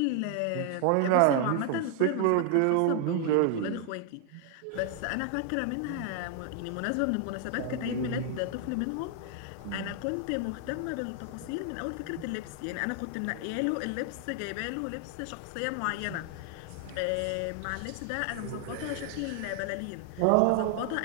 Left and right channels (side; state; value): both; different; correlation 0.00